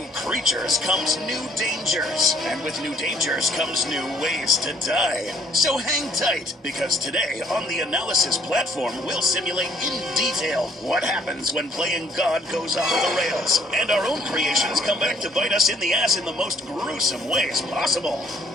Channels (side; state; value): both; normal; correlation 0.62